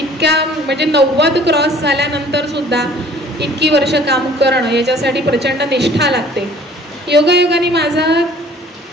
म्हणजे 90 क्रॉस झाल्यानंतर सुद्धा इतकी वर्ष काम करणं याच्यासाठी प्रचंड निष्ठा लागते. योगायोगाने माझा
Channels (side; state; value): both; normal; correlation 0.52